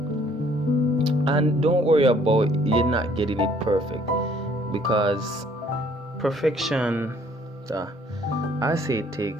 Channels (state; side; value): normal; both; correlation 0.61